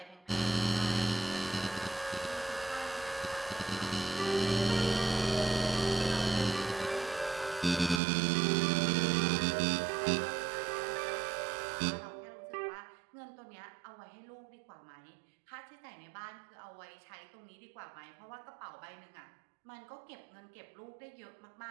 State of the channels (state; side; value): drops out; left; at 8.0 s